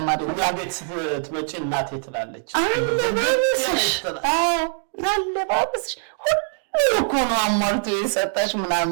ቤት ስትመጪ እናቴ ትላለች አለባበስሽ ሁሉ እኮ ነው አሟልቶ የሰጠሽ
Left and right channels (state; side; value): silent; left; digital silence